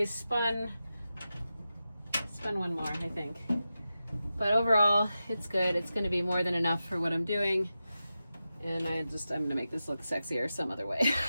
spun one more, I think. But overall, it's good. It's gonna be more than enough for what I'm doing. And I'm gonna make this look sexier some other way.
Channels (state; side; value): inverted; both; correlation -0.92